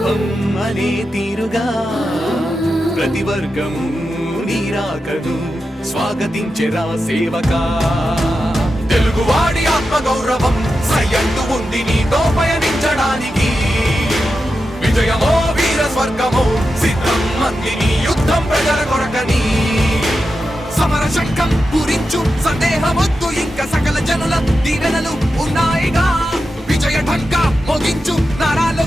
అనే తీరుగా ప్రతి వర్గము నీరాకను స్వాగతించెరా సేవకా తెలుగువాడి ఆత్మగౌరవం సయ్యంటూ ఉంది నీతో పయనించడానికి విజయమో వీర స్వర్గమో సిద్ధం మందిని యుద్ధం ప్రజల కొరకని సమర శంఖం పూరించు సందేహమొద్దు ఇంకా సకల జనుల దీవెనలు ఉన్నాయిగా విజయ ఢంకా మోగించు నారా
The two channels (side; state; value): both; normal; correlation 0.90